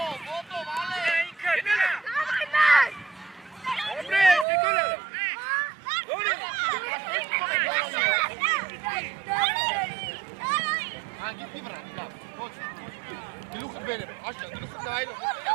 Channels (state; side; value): drops out; left; at 4.5 s